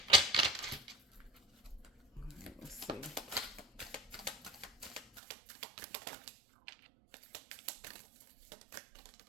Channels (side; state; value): left; drops out; at 5.2 s